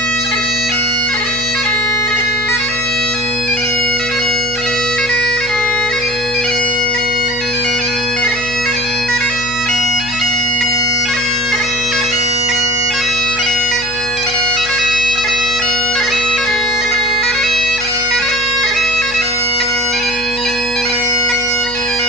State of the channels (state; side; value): noise; left; hum, 17 dB below the sound